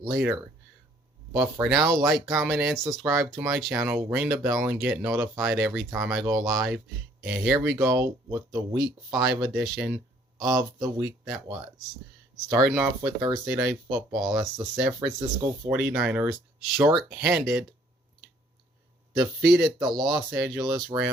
But for now, like, comment, and subscribe to my channel. Ring the bell and get notified every time I go live. And here we go with the Week 5 edition of the week that was. Starting off with Thursday Night Football. That's the San Francisco 49ers, short-handed, defeated the Los Angeles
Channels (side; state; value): both; normal; correlation 0.61